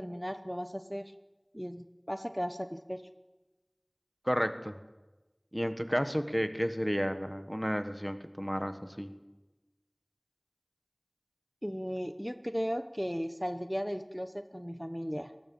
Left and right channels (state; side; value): identical; both; correlation 1.00